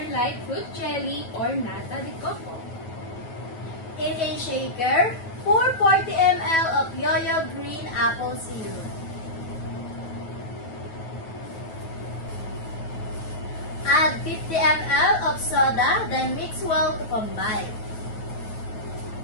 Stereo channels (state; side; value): late; right; 9.2 ms